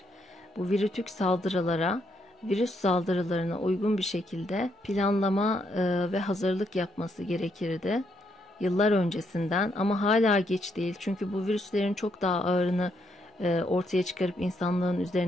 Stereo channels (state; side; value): normal; both; correlation 0.76